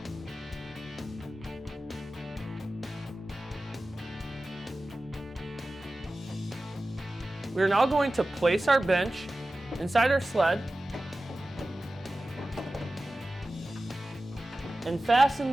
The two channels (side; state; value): both; normal; correlation 0.95